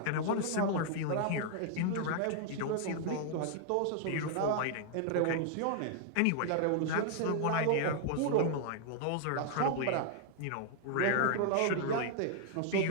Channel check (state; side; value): different; both; correlation 0.00